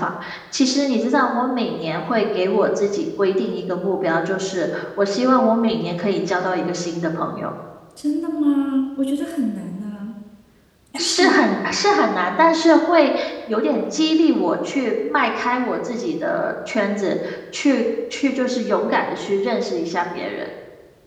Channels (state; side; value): identical; both; correlation 1.00